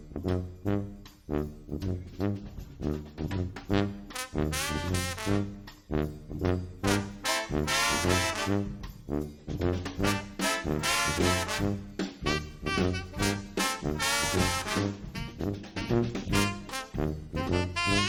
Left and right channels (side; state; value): both; identical; correlation 1.00